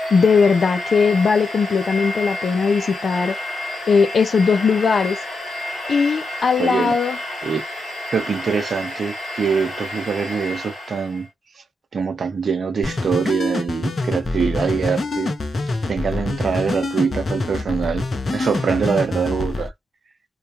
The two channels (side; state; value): both; normal; correlation 0.83